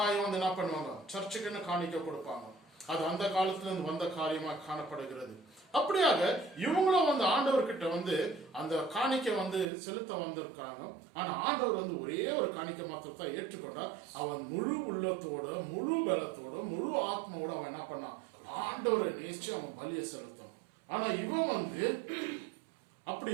வந்து என்ன பண்ணுவாங்க? சர்ச்சுக்குன்னு காணிக்க கொடுப்பாங்க. அது அந்த காலத்துல இருந்து வந்த காரியமா காணப்படுகிறது. அப்படியாக இவங்களும் வந்து ஆண்டவர்கிட்ட வந்து அந்த காணிக்கை வந்து செலுத்த வந்திருக்காங்க. ஆனா ஆண்டவர் வந்து ஒரே ஒரு காணிக்கை மாத்திரத்தை ஏற்றுக்கொண்டார். அவன் முழு உள்ளத்தோட, முழு பலத்தோட, முழு ஆத்மாவோட அவன் என்ன பண்ணான்? ஆண்டவரை நேசிச்சு அவன் பலியை செலுத்தணும். ஆனா இவன் வந்து அப்படி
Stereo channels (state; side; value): drops out; left; at 9.7 s